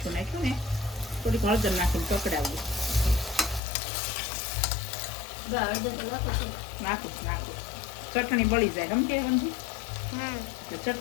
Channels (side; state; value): right; drops out; at 3.6 s